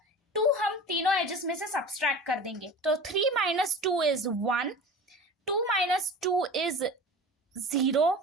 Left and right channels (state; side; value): normal; both; correlation 0.36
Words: 2 हम तीनों एजेस में से सब्सट्रैक्ट कर देंगे, तो 3 माइनस 2 इज 1, 2 माइनस 2 इज 0